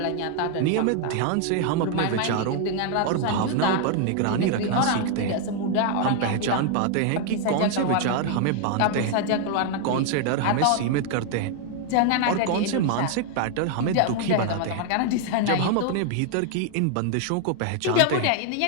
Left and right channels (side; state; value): both; different; correlation 0.00